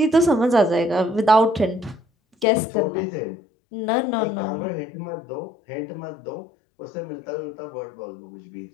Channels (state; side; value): drops out; right; at 2.5 s